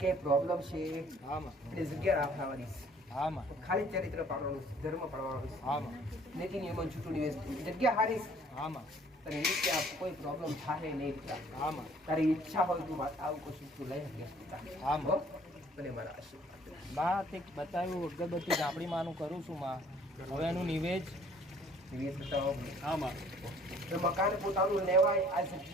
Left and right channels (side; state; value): both; normal; correlation 0.56